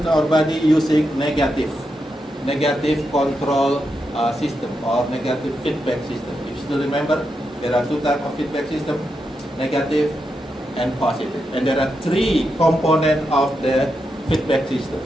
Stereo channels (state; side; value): normal; both; correlation 0.85